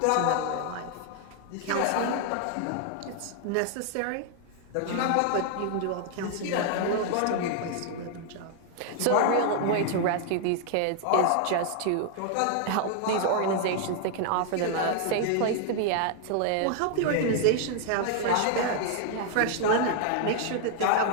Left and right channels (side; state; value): both; different; correlation 0.00